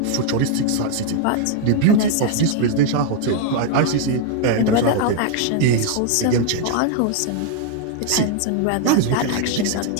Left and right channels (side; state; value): both; different; correlation 0.00